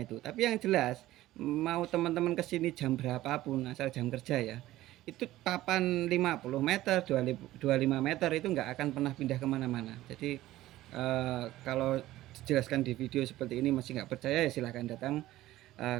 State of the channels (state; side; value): quieter; left; 15.7 dB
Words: itu. Tapi yang jelas mau teman-teman kesini jam berapapun asal jam kerja ya, itu papan 50 meter, 25 meter itu nggak akan pernah pindah kemana-mana. Jadi kalau dijelaskan di video seperti ini masih nggak percaya ya silahkan datang